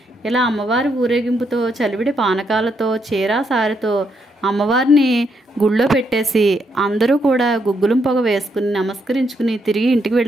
ఇలా అమ్మవారి ఊరేగింపుతో చలివిడి పానకాలతో చీరా సారితో అమ్మవారిని గుళ్ళో పెట్టేసి అందరూ కూడా గుగ్గులం పొగ వేసుకుని నమస్కరించుకుని తిరిగి ఇంటికి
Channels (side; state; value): both; normal; correlation 0.77